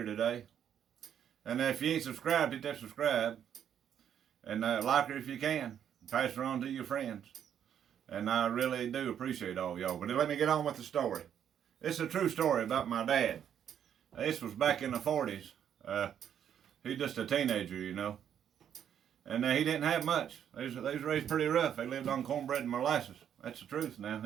today. And if you ain't subscribed, hit that subscribe. And like her if you can. Pass her on to your friends. And I really do appreciate all y'all. But let me get on with the story. It's a true story about my dad. This was back in the 40s. He's just a teenager, you know. And he didn't have much. They was raised pretty rough. They lived on cornbread and molasses. That's the truth now.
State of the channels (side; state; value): left; quieter; 9.2 dB